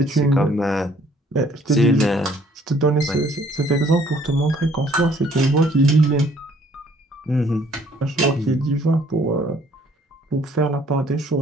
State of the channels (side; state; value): both; normal; correlation 0.60